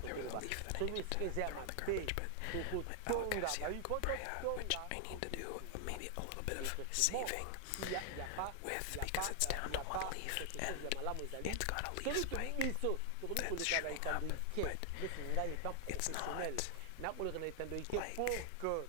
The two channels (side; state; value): both; different; correlation 0.00